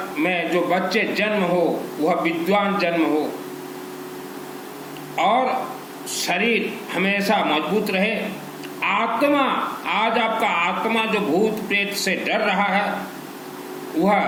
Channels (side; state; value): both; identical; correlation 1.00